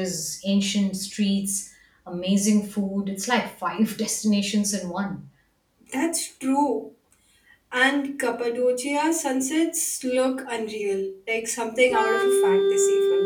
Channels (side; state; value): both; identical; correlation 1.00